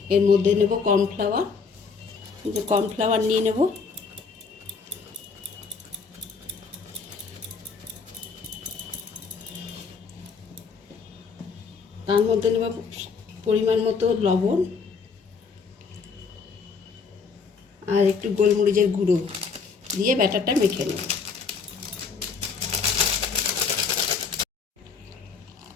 এর মধ্যে নেব কর্নফ্লাওয়ার। কর্নফ্লাওয়ার নিয়ে নেব। তার মধ্যে নেব পরিমাণ মতো লবণ আর একটু গোলমরিচের গুঁড়ো দিয়ে ব্যাটারটা মেখে নেব।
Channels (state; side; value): quieter; right; 5.3 dB